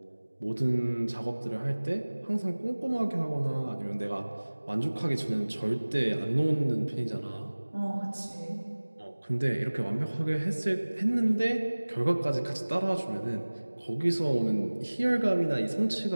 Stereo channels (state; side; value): inverted; both; correlation -1.00